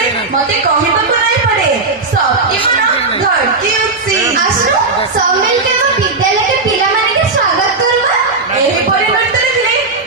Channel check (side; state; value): left; quieter; 3.7 dB